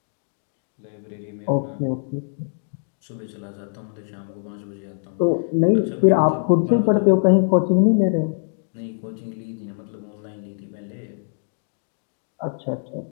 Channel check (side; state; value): right; silent; digital silence